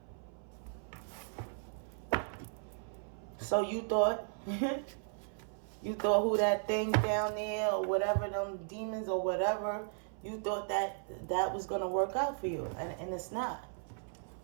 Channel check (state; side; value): silent; left; 54 dB below the other